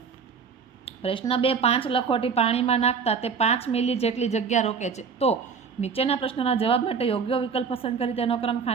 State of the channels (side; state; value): left; quieter; 6.0 dB